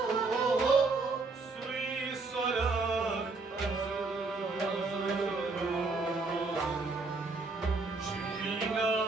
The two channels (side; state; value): left; quieter; 3.8 dB